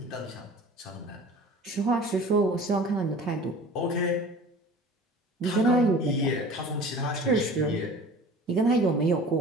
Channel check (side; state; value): both; normal; correlation 0.42